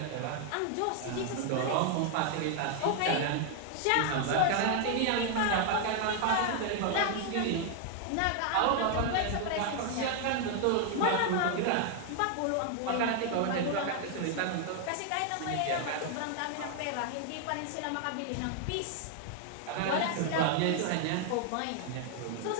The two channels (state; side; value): different; both; correlation 0.00